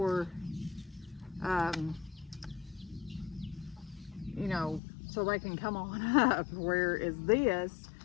you know, so they can come on up. Whereas this,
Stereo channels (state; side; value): drops out; right; at 4.8 s